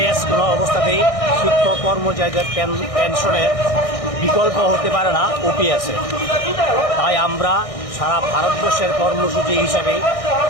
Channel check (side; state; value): right; late; 1.6 ms